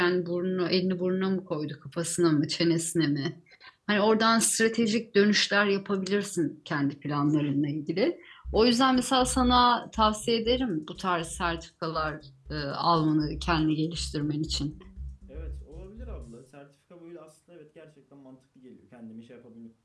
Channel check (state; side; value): identical; both; correlation 1.00